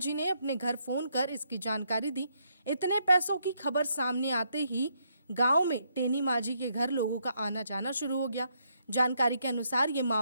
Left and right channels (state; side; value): inverted; both; correlation -0.75